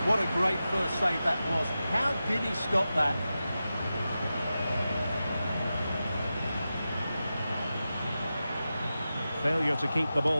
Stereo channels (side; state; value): both; inverted; correlation -0.92